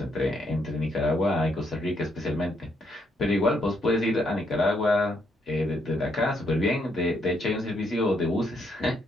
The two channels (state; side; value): normal; both; correlation 0.75